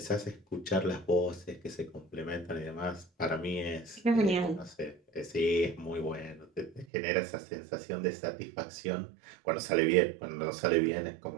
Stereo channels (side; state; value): left; drops out; at 6.9 s